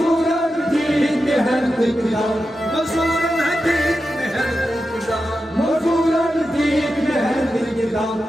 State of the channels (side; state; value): both; normal; correlation 0.90